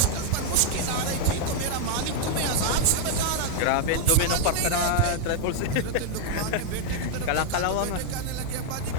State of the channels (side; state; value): both; different; correlation 0.00